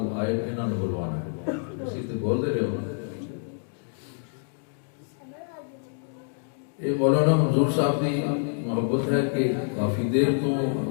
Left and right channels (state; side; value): silent; right; 60 dB below the other